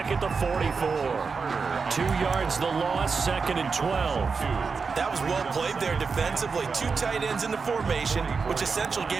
at the 44. 2 yards the loss, 2nd and 12. That was well played there defensively. 2 tight ends in the formation, which essentially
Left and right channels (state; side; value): quieter; left; 5.0 dB